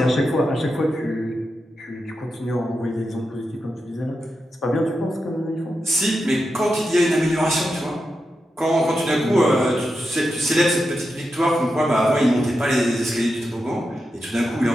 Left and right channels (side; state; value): both; normal; correlation 0.88